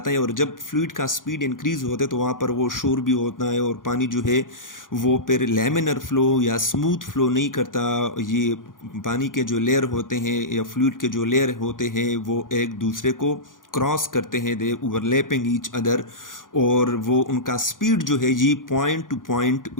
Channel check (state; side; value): late; right; 0.89 ms